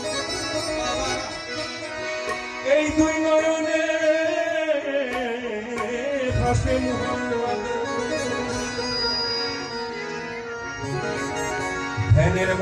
এই দুই নয়নে ভাসে মুহাম্মদ, ধ্যানের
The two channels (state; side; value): identical; both; correlation 1.00